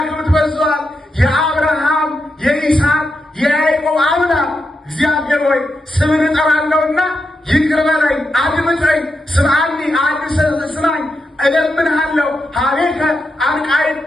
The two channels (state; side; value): normal; both; correlation 0.85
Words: በዝቷል። የአብርሃም የይስሐቅ የያዕቆብ አምላክ እግዚአብሔር ሆይ ስምን እጠራለሁና ይቅር በለኝ፣ አድምጠኝ፣ ስምዓኒ ስማኝ፣ እለምንሃለሁ። ሀቤከ